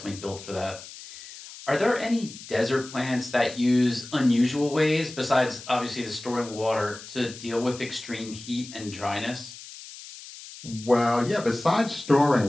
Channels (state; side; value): noise; left; hiss, 15 dB below the sound